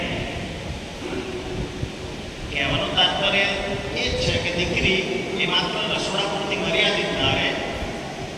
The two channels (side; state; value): both; identical; correlation 1.00